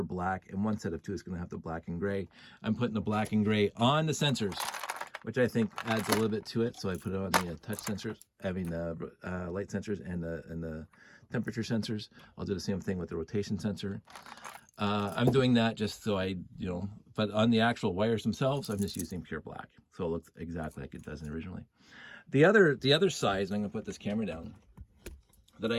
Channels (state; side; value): identical; both; correlation 1.00